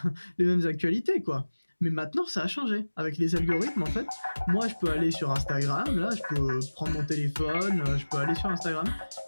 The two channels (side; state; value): both; inverted; correlation -1.00